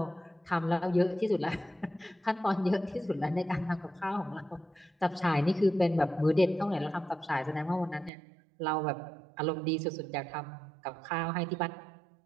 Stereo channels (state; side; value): drops out; left; at 8.1 s